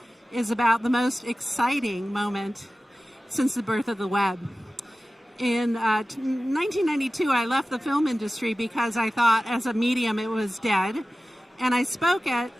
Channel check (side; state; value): both; normal; correlation 0.96